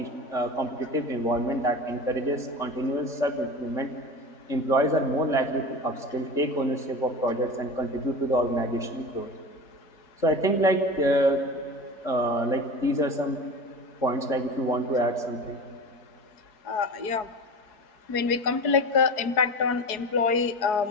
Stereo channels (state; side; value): late; right; 4.7 ms